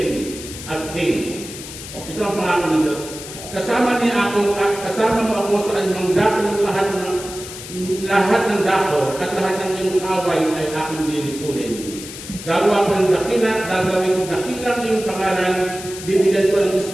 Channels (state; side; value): noise; left; hiss, 12 dB below the sound